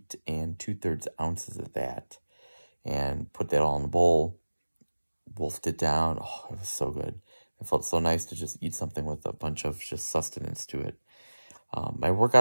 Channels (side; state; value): both; inverted; correlation -1.00